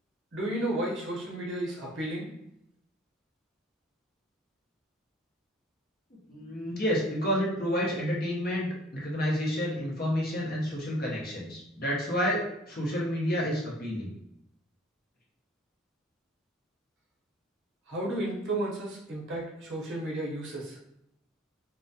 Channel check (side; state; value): both; normal; correlation 0.52